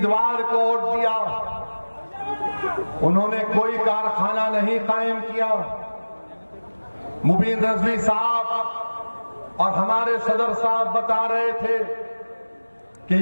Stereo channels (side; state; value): both; inverted; correlation -1.00